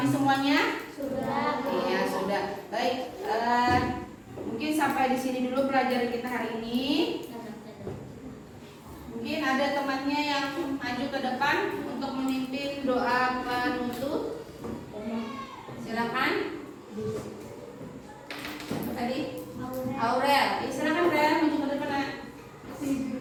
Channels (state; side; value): identical; both; correlation 1.00